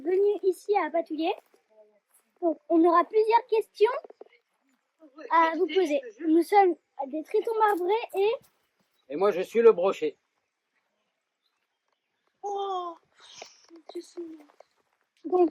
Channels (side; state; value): both; identical; correlation 1.00